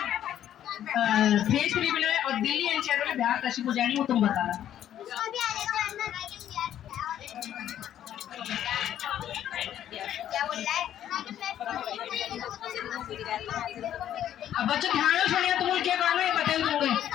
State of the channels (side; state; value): right; quieter; 11.0 dB